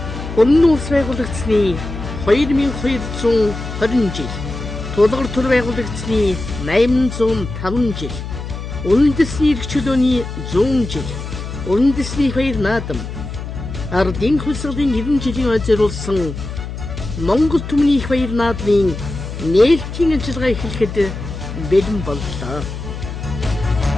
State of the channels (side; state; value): left; noise; hum, 8 dB below the sound